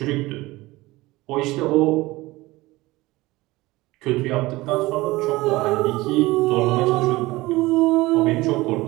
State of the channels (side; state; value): left; quieter; 19.9 dB